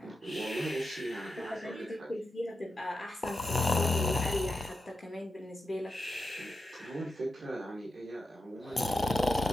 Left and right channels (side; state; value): both; normal; correlation 0.88